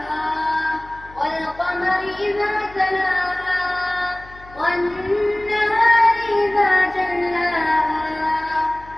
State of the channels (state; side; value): noise; left; hum, 21 dB below the sound